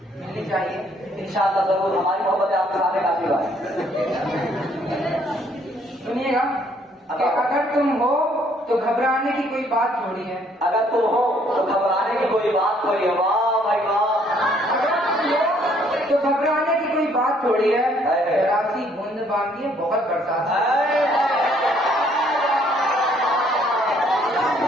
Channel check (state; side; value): normal; both; correlation 0.64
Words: मिलनी चाहिए इंशाअल्लाह जरूर, हमारी मोहब्बत आपके सामने काफी बात। सुनिएगा कि अगर तुम हो तो घबराने की कोई बात थोड़ी है, अगर तुम हो तो घबराने की कोई बात थोड़ी है। वाह भाई वाह, तो घबराने की कोई बात थोड़ी है। राशि बूंद बांधी है, बहुत बरसात है।